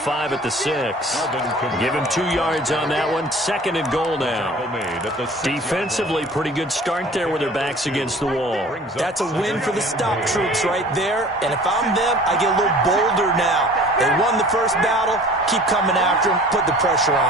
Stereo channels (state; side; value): normal; both; correlation 0.46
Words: at the 6. Give him 2 yards on that one. Second and goal now. Defensively, pretty good start there with their backs against the wall. That's a win for the stop troops right there. And if I'm them, I get a little bolder now. They won the first battle. Keep coming after them. Put the pressure